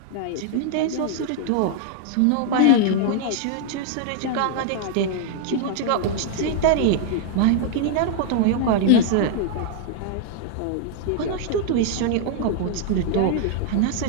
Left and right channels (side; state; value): both; different; correlation -0.01